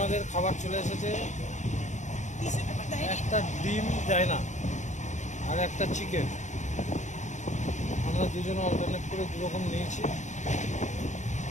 খাবার চলে এসেছে, একটা ডিম দেয় না আর একটা চিকেন। আমরা দুজনে অল্টারনেট করে দুরকম নিয়েছি,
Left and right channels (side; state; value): right; late; 0.35 ms